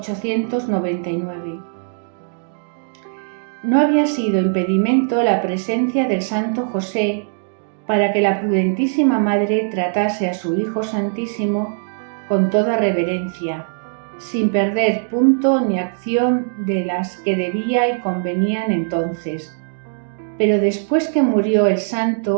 No había sido impedimento la presencia del Santo José para que la prudentísima Madre tratase a su Hijo Santísimo con toda reverencia, sin perder punto ni acción de las que debía y convenían entonces. Pero después que murió el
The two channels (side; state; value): left; silent; digital silence